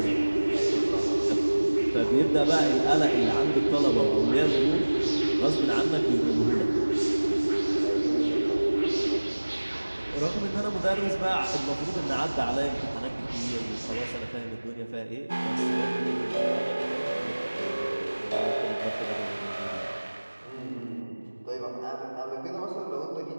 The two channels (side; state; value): both; inverted; correlation -1.00